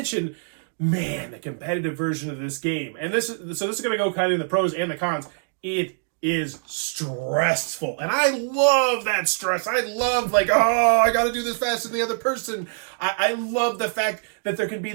man, the competitive version of this game. And this is going to go kind of in the pros and the cons. It is stressful, and I love that stress. I love like, oh, I gotta do this faster than the other person. I love the fact that there can be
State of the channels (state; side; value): silent; left; digital silence